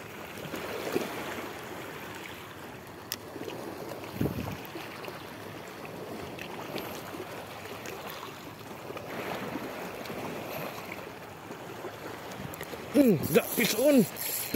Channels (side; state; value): both; identical; correlation 1.00